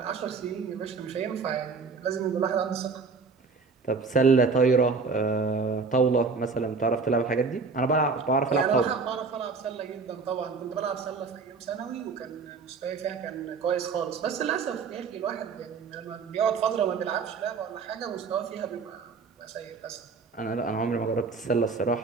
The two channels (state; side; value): quieter; left; 4.7 dB